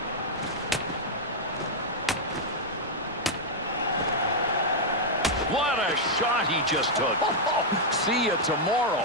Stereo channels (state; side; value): normal; both; correlation -0.03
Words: What a shot he just took. See you tomorrow.